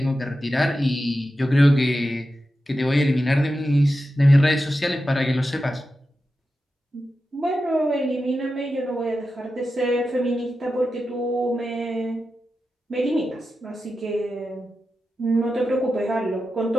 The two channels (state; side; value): normal; both; correlation 0.91